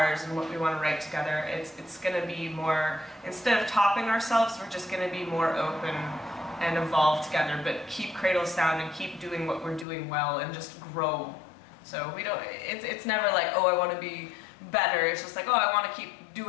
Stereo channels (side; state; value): right; drops out; at 9.9 s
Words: and what we want to write together, it's going to be more, instead of topping ourselves, we're just going to be more open and evolve together, but keep Cradle sound and keep doing what we're doing well and just grow. So we don't, it's never like, oh, I want to be better. It's just like, oh, I want to keep